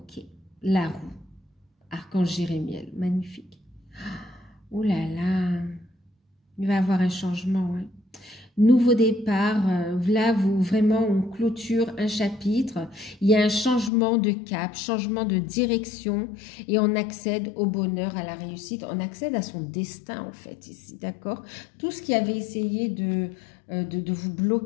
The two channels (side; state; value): right; drops out; at 13.9 s